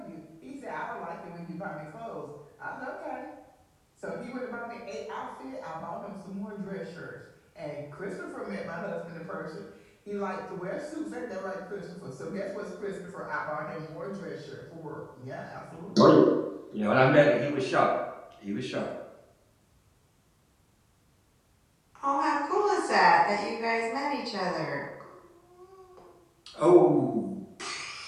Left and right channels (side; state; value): both; identical; correlation 1.00